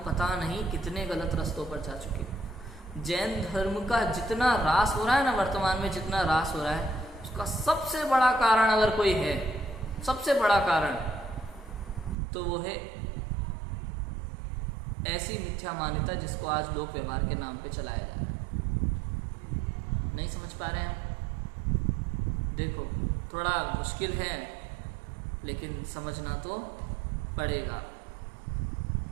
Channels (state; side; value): drops out; left; at 12.2 s